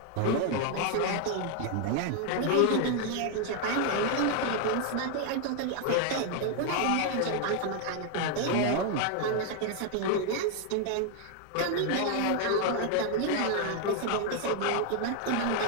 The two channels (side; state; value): both; different; correlation 0.00